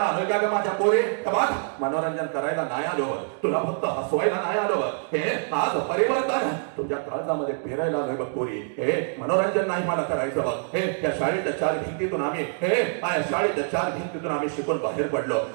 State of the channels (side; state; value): left; silent; 59 dB below the other